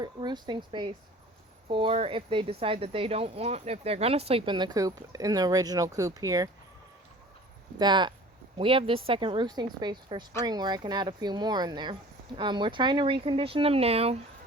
roosting space for if they decide that they don't want, if they're going to sleep in the coop, in the original coop here, that we have this second roosting space for spring where I can add a few more in there. We're trying to recondition them now,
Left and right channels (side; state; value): both; normal; correlation 0.44